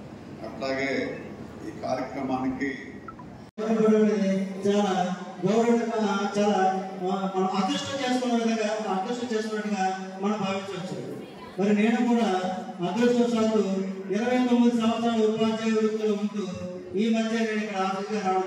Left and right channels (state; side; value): identical; both; correlation 1.00